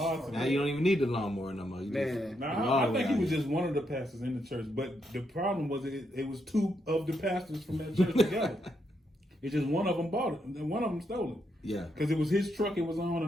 Now you don't even need the lawnmower no more. You Man. I think he was just one of the pastors in the church, but the problem was it was two of the pastors from that church together. It's just one of them bought it, and then one of them stole it. Yeah. Because it was his truck it was on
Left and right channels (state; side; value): normal; both; correlation 0.79